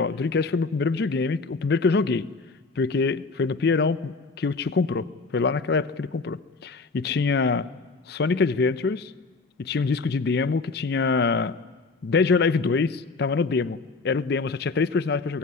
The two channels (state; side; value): quieter; right; 4.1 dB